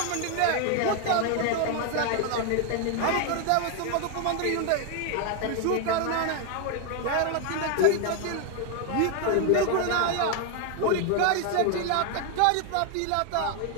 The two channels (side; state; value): both; different; correlation 0.01